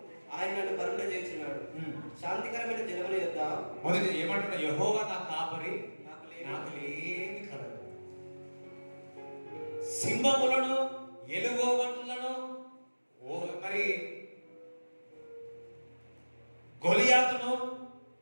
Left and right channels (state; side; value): inverted; both; correlation -1.00